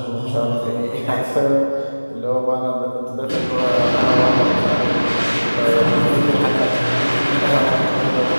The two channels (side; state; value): both; inverted; correlation -1.00